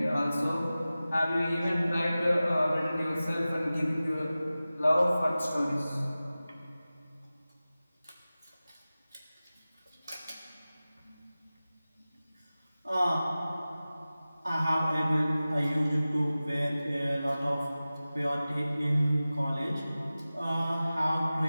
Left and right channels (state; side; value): inverted; both; correlation -0.96